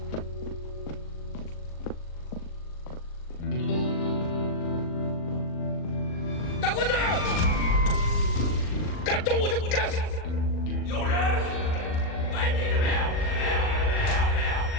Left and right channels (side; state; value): right; late; 39 ms